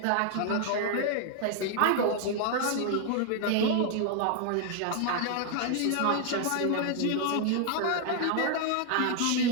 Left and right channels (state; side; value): different; both; correlation 0.00